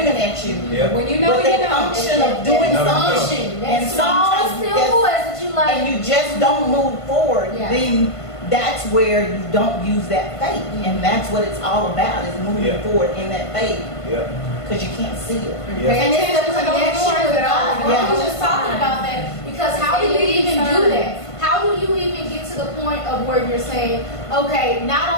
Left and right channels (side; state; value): right; late; 1.5 ms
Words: at you. Yeah. When you know, But you that know. unction of doing That something, Unction. That and small, sometimes still that's- voice that you like. and you just don't move forward, Yeah. then that's where you don't use that faith. And that's what it's all about, is moving Yeah. forward in that faith, Yeah. because you can't see it. Yeah. And it's the Attention to those connection doors with that God. open. I Yeah. was just talking about that because how do you even do that? How do you even get to the point of where you're saying, okay,